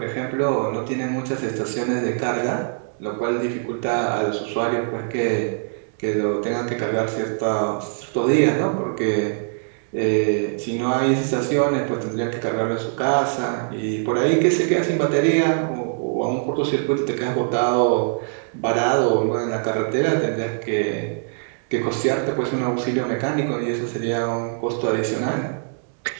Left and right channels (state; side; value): silent; left; digital silence